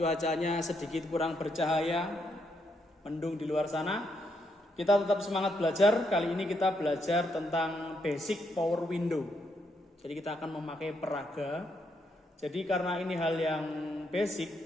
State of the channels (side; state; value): both; normal; correlation 0.78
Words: sedikit kurang bercahaya, mendung di luar sana. Kita tetap semangat belajar. Kali ini kita belajar tentang basic power window. Jadi kita akan memakai peraga. Jadi karena ini hal yang